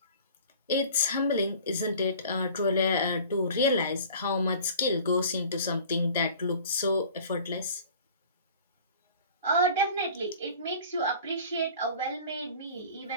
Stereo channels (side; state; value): both; inverted; correlation -0.45